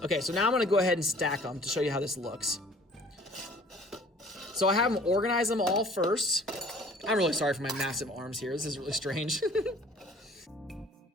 Okay, so now I'm gonna go ahead and stack them to show you how this looks. So I have them organize them all first. I'm really sorry for my massive arms here, this is really strange.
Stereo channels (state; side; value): normal; both; correlation 0.52